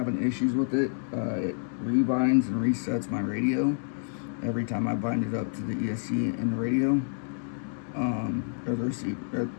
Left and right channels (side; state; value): right; silent; digital silence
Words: issues with it. It rebinds and resets my radio every time I bind it up to the ESC in the radio, or the receiver, or